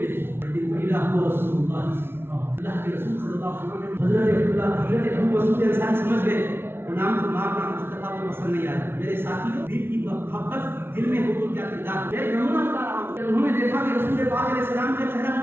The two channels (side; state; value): left; late; 0.11 ms